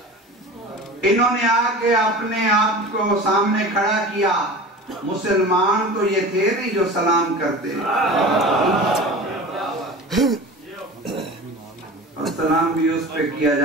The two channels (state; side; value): normal; both; correlation 0.35